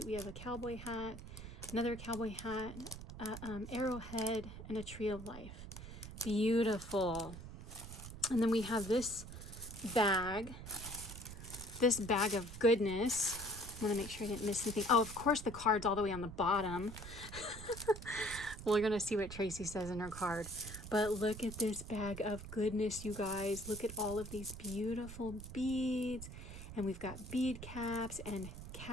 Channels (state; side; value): noise; right; rumble, 11 dB below the sound